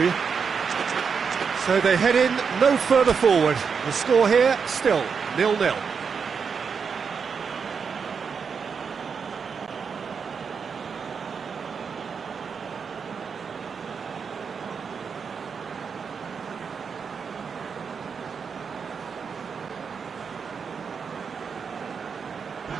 So they head in no further forward. The score here, still 0-0.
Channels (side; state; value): left; quieter; 6.0 dB